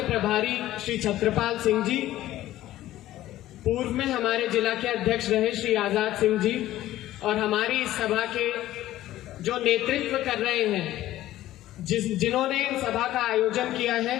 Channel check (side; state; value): right; quieter; 14.5 dB